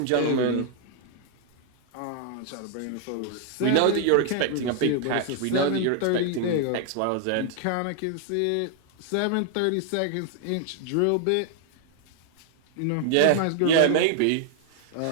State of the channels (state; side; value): different; both; correlation 0.00